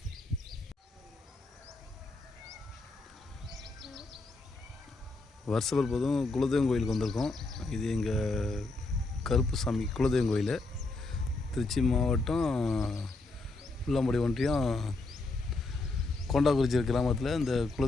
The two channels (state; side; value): quieter; right; 3.3 dB